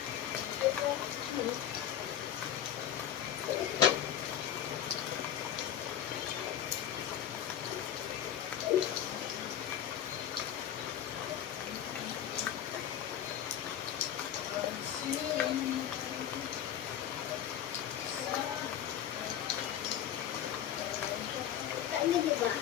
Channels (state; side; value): quieter; right; 10.2 dB